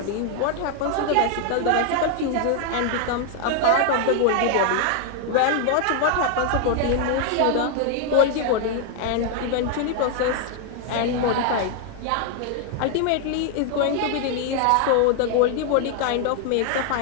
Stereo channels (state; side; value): different; both; correlation 0.00